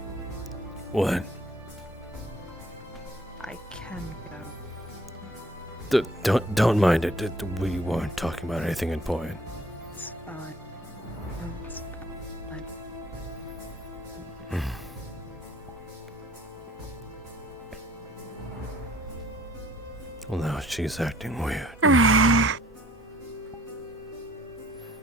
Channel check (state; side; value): normal; both; correlation 0.58